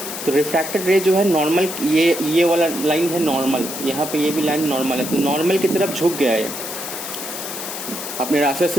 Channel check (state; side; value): noise; left; hiss, 7 dB below the sound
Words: तो रिफ्रैक्टेड रे जो है नॉर्मल, ये वाला लाइन है नॉर्मल, यहाँ पे ये भी लाइन नॉर्मल है, तो नॉर्मल की तरफ झुक गया है, अपने रास्ते